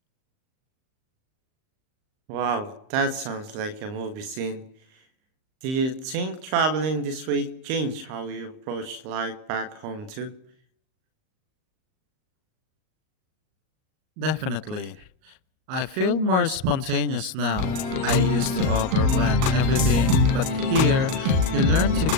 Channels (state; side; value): late; left; 38 ms